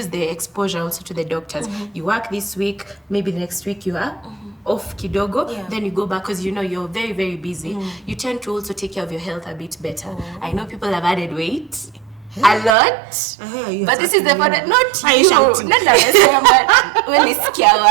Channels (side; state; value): left; drops out; at 12.8 s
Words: the exposure also to the doctors. You work this week, maybe the next week you are off kidogo, then you go back because you're very, very busy. You tend to also take care of your health a bit better. I know people have added weight. A lot, but this is the part that not you.